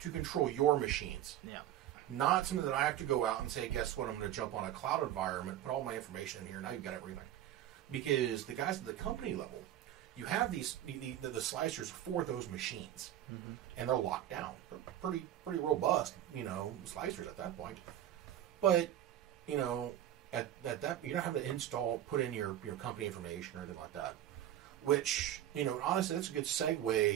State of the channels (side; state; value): left; quieter; 12.0 dB